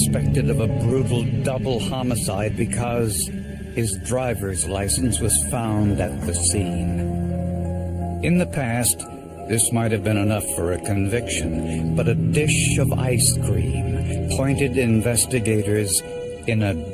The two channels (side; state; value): both; identical; correlation 1.00